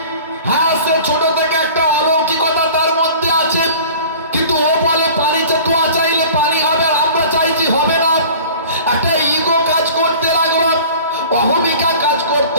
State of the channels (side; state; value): both; inverted; correlation -0.42